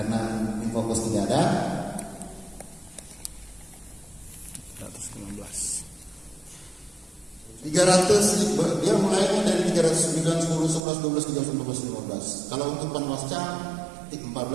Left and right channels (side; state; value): left; drops out; at 10.8 s